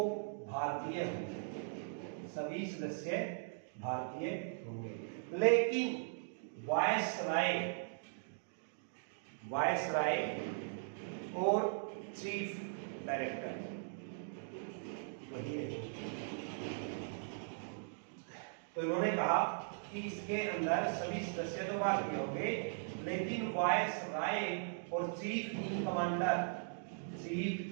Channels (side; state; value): left; silent; digital silence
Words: भारतीय होंगे, सभी सदस्य भारतीय होंगे, लेकिन वायसराय और चीफ डायरेक्टर वही है। तो इन्होंने कहा कि इसके अंदर सभी सदस्य तो भारतीय होंगे, लेकिन वायसराय और चीफ